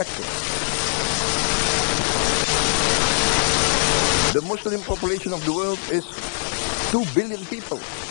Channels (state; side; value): silent; right; digital silence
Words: The Muslim population of the world is 2 billion people.